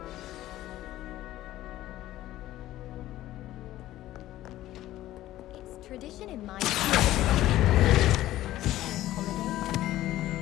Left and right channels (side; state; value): right; quieter; 14.7 dB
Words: It's tradition in my holiday.